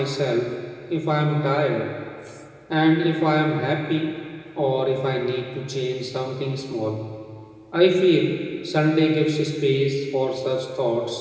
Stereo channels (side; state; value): both; identical; correlation 1.00